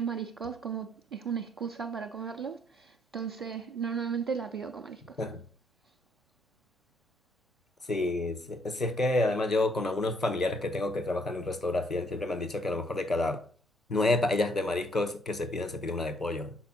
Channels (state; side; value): normal; both; correlation 0.67